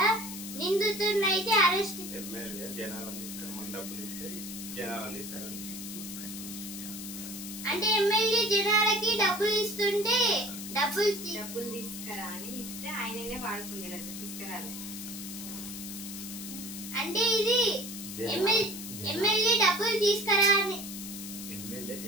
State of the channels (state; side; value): noise; left; hiss, 9 dB below the sound